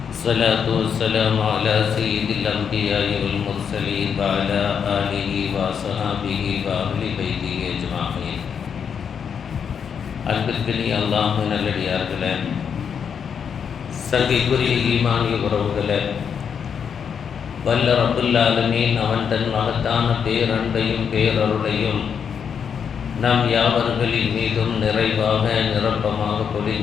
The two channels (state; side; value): quieter; right; 7.2 dB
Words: الصلاة والسلام على سيد الأنبياء والمرسلين وعلى آله وصحبه وأهل بيته أجمعين அன்பிற்கினிய அல்லாஹ்வின் நல்லடியார்களே, சங்கைக்குரிய ஈமானிய உறவுகளே, வல்ல ரப்புல் ஆலமீன் அவன் தன் மகத்தான பேரன்பையும் பேரருளையும் நாம் யாவர்களின் மீதும் நிறைவாக நிரப்பமாக